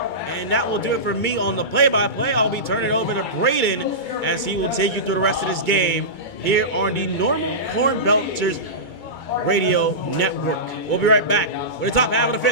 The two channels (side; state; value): right; late; 2.2 ms